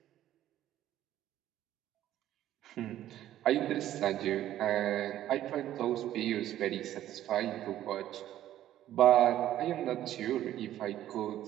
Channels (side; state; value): left; quieter; 12.7 dB